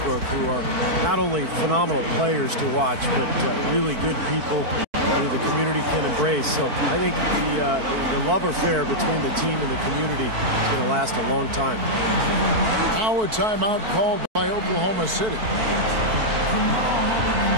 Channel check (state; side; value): late; left; 4.6 ms